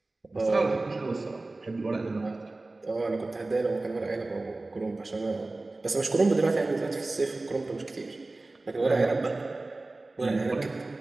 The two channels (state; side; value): quieter; left; 3.1 dB